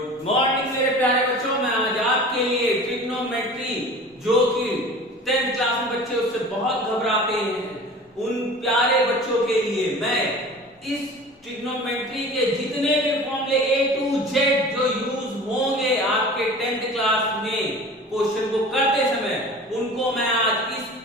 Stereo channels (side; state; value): both; normal; correlation 0.40